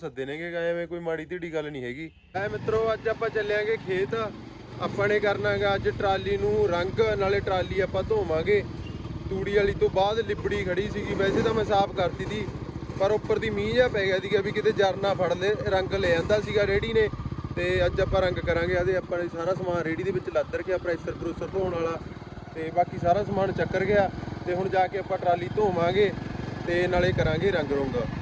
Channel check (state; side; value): identical; both; correlation 1.00